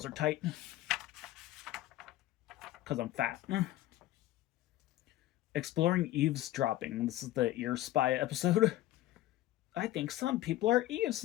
are tight. Because I'm fat. Exploring eavesdropping. This is the ear spy episode. I think some people are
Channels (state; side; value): quieter; right; 15.1 dB